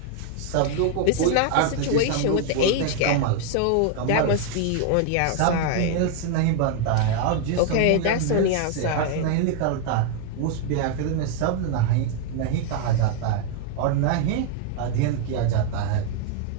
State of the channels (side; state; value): both; different; correlation 0.00